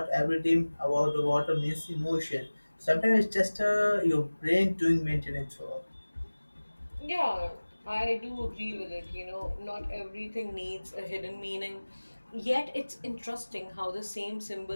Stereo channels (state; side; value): inverted; both; correlation -1.00